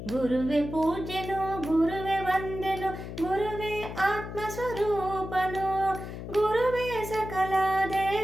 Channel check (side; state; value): left; noise; hum, 9 dB below the sound